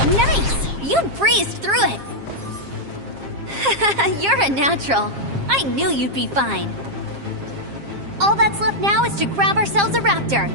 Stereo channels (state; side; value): late; left; 7.4 ms